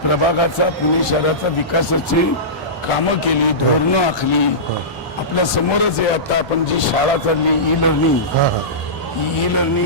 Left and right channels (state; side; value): normal; both; correlation -0.20